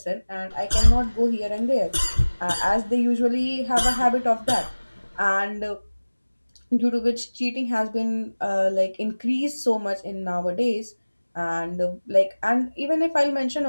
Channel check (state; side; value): inverted; both; correlation -1.00